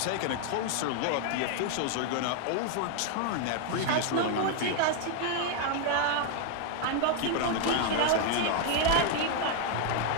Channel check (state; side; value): different; both; correlation 0.00